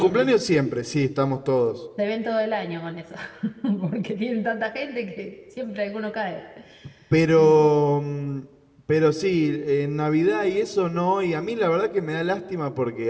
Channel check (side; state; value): both; identical; correlation 1.00